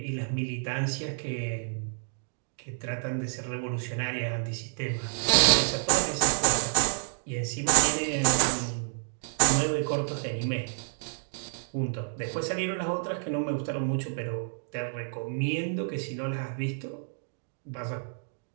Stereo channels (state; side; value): silent; left; digital silence